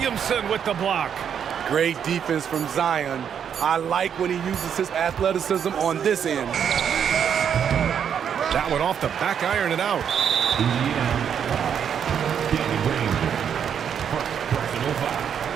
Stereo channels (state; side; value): quieter; left; 8.1 dB